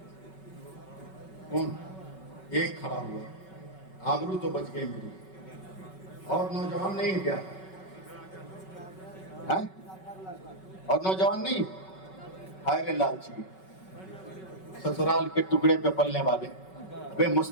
کون؟ ایک کھڑا ہوا، آبرو تو بچ گئی میری۔ اور نوجوان نہیں کیا؟ ہے؟ اور نوجوان نہیں؟ ہائے لالچی، سسرال کے ٹکڑے پہ پلنے والے، بے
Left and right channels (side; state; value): right; late; 5.3 ms